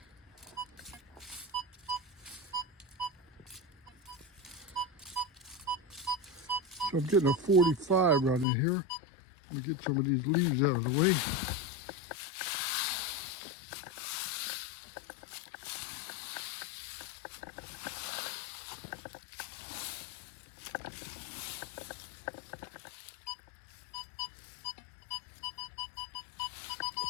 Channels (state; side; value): drops out; right; at 8.5 s